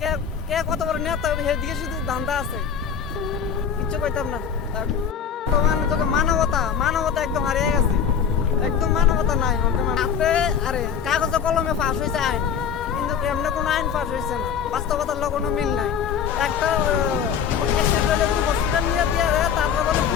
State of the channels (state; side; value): quieter; right; 7.5 dB